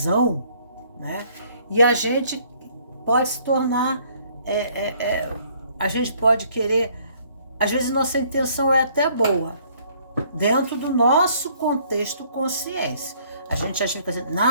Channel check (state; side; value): inverted; both; correlation -0.62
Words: né? E a gente pode se tornar... a gente pode querer, às vezes nossa intenção é até boa, dentro do nosso contexto consciência. A gente acha que assim,